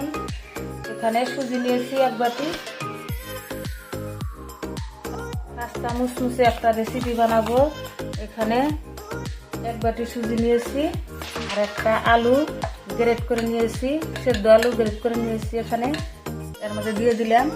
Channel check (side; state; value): both; identical; correlation 1.00